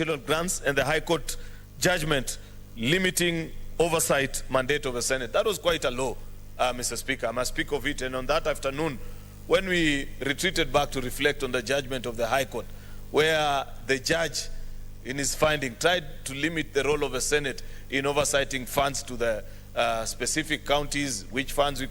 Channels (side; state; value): both; identical; correlation 1.00